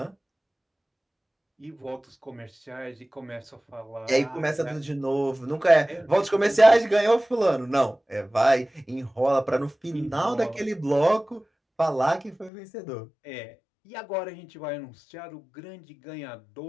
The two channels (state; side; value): drops out; right; at 12.5 s